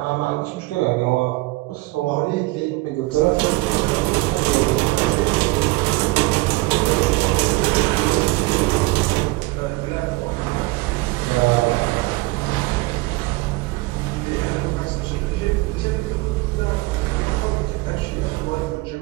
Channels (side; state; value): left; quieter; 21.9 dB